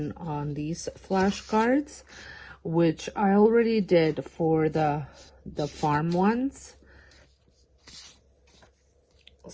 on these flashcards, which I already did for the farm ones.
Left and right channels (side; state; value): both; identical; correlation 1.00